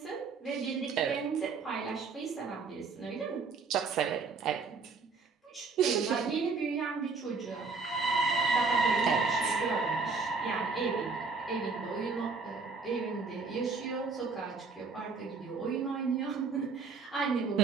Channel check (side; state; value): left; quieter; 4.6 dB